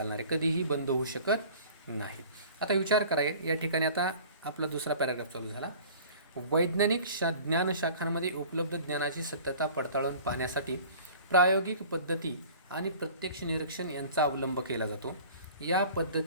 आहे, कधीही बंद होऊ शकत नाही. आता विचार कराय, या ठिकाणी आता आपला दुसरा पॅराग्राफ चालू झाला. वैज्ञानिक ज्ञानशाखांमध्ये उपलब्ध ज्ञानाची सत्यता पडताळून पाहण्यासाठी प्रायोगिक पद्धती आणि प्रत्यक्ष निरीक्षण यांचा अवलंब केला जातो. या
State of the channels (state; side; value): inverted; both; correlation -0.45